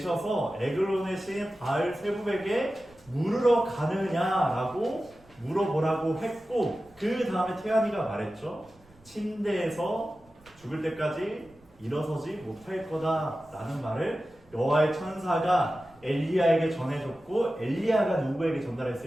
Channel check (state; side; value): noise; right; rumble, 28 dB below the sound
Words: 에글론의 신 바알 세부백에 물으러 가느냐라고 물어보라고 했고, 그 다음에 태안이가 말했죠. 침대에서 죽을 때까지 일어서지 못할 거다라는 말을 여호와의 천사가 엘리야에게 전해줬고, 엘리야가 누구에게